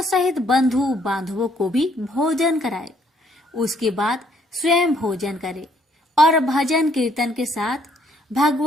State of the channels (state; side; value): normal; both; correlation 0.67